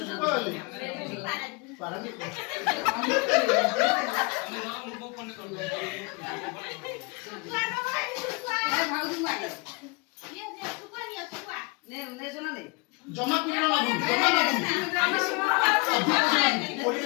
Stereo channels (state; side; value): quieter; right; 29.2 dB